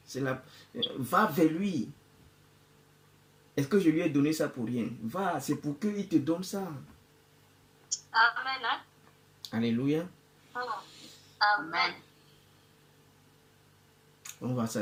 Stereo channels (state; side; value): identical; both; correlation 1.00